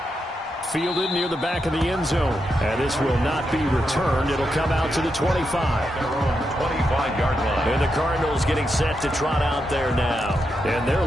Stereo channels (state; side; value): normal; both; correlation 0.84